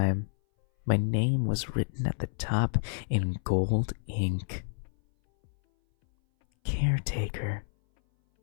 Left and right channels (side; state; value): right; silent; 58 dB below the other